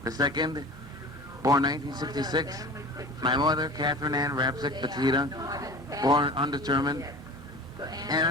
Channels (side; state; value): both; normal; correlation 0.37